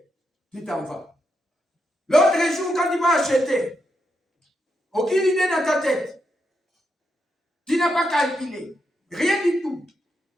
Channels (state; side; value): normal; both; correlation 0.83